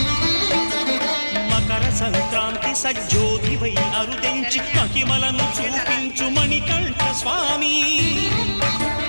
మకర సంక్రాంతి సజ్జోతివై అరుదించి మహిమలను చూపించు మణికంఠ స్వామి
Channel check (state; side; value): inverted; both; correlation -1.00